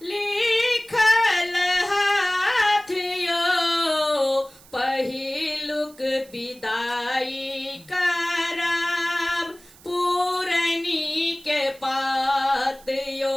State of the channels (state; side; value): noise; right; hiss, 24 dB below the sound